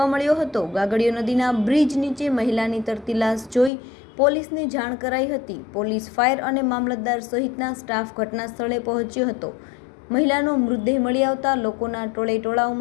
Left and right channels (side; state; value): right; drops out; at 3.7 s